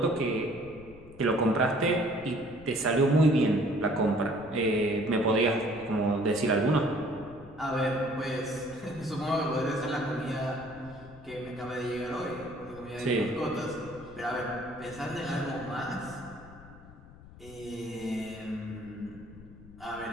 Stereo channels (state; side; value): noise; left; rumble, 19 dB below the sound